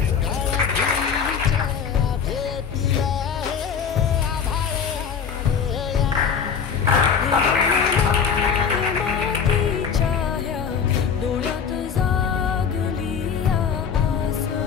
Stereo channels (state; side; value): quieter; right; 6.7 dB